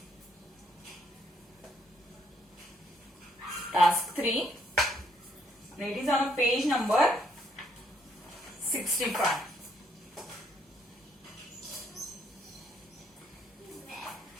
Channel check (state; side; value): normal; both; correlation 0.70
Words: Task 3. And it is on page number 65.